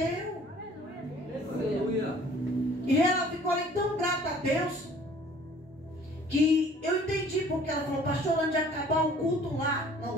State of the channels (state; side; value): normal; both; correlation 0.53